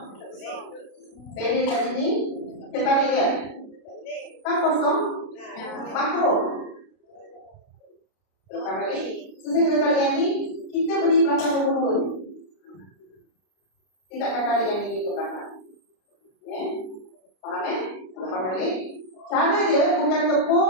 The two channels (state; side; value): late; right; 32 ms